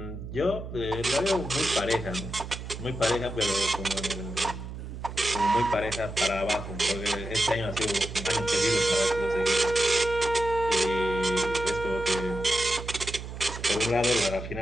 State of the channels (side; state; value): right; noise; hum, 9 dB below the sound